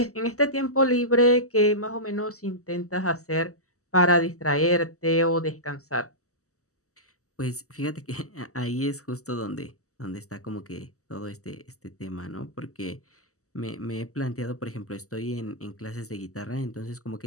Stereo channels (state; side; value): late; right; 0.65 ms